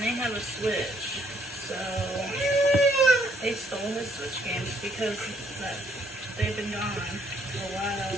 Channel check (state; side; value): normal; both; correlation 0.67